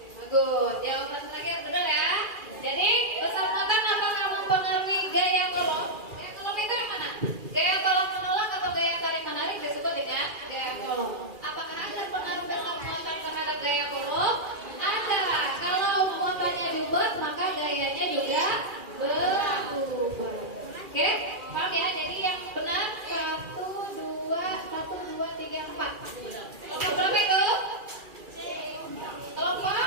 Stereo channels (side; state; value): left; late; 2.4 ms